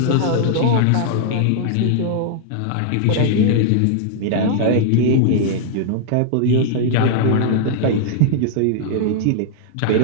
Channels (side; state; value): both; different; correlation -0.01